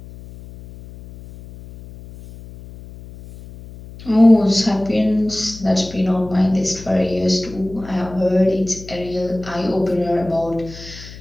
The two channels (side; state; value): left; noise; hum, 16 dB below the sound